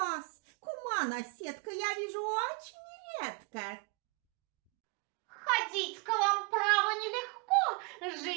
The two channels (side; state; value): left; quieter; 32.9 dB